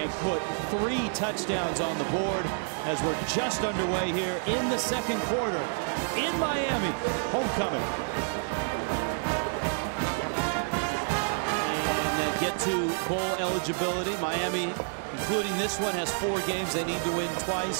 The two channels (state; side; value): silent; left; 59 dB below the other